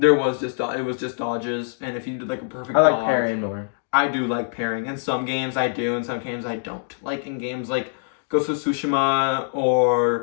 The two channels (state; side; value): silent; right; digital silence